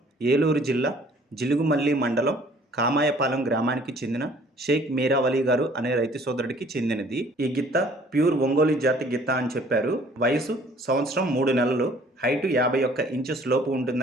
ఏలూరు జిల్లా జిలుగుమల్లి మండలం కామాయపాలెం గ్రామానికి చెందిన షేక్ మీరావలి గారు అనే రైతు సోదరుడికి చెందినది. ఈ గిత్త ప్యూర్ ఒంగోలు జాతి గిత్త అని చెప్పారు. వయసు సంవత్సరం 3 నెలలు, హైటు 51 ఇంచెస్ లోపు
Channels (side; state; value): both; normal; correlation 0.56